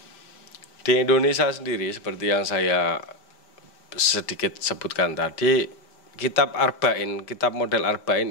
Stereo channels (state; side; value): late; right; 5.0 ms